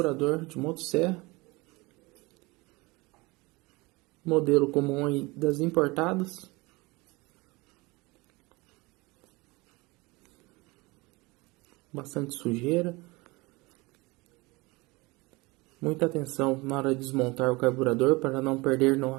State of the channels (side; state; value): left; quieter; 23.8 dB